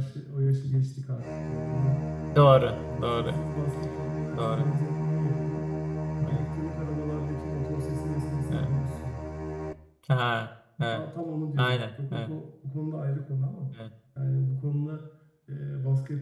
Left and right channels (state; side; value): identical; both; correlation 1.00